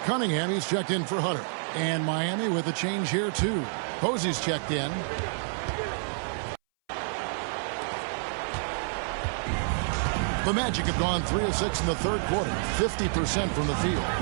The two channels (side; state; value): left; silent; 59 dB below the other